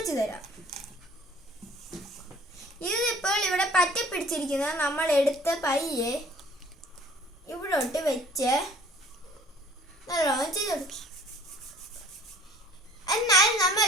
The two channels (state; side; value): normal; both; correlation 0.52